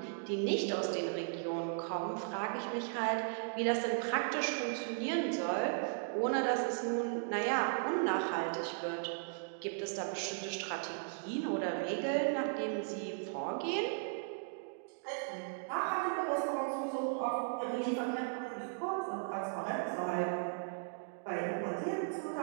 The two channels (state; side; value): silent; left; digital silence